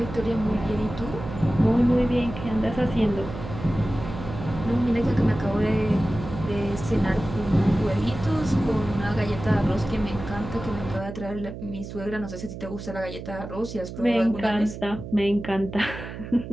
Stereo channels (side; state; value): right; noise; hum, 10 dB below the sound